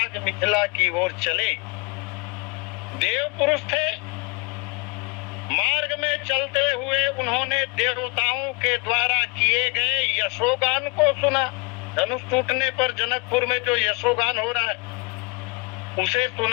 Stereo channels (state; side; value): quieter; right; 28.7 dB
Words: मिथिला की ओर चले। देव पुरुष थे, मार्ग में चलते हुए उन्होंने देवताओं के द्वारा किए गए यशोगान को सुना। धनुष टूटने पर जनकपुर में जो यशोगान हो रहा है उसे